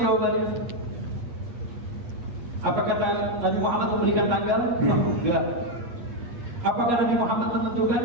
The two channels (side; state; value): left; late; 8.5 ms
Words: jawabannya? Apa kata Nabi Muhammad memberikan tanggal? Enggak. Apakah Nabi Muhammad menentukan?